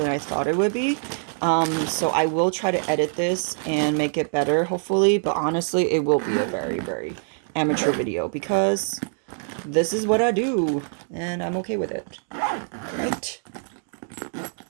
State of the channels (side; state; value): left; silent; 62 dB below the other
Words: I thought it would be. So I will try to edit this and make it better, hopefully. But honestly, it will be a very, very amateur video because this is what I do and I'm okay with it. Right?